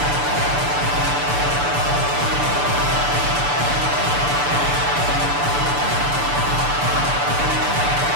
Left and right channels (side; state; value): left; late; 6.9 ms